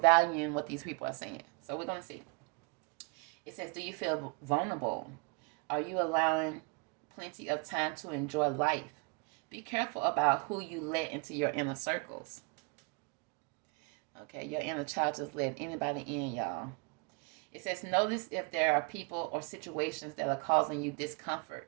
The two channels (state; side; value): quieter; left; 32.4 dB